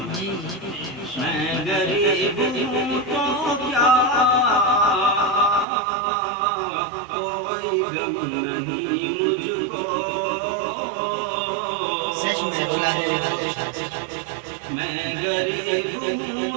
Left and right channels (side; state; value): left; drops out; at 5.7 s